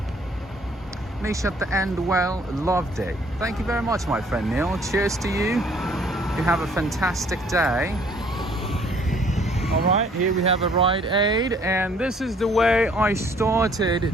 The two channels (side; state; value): both; normal; correlation 0.60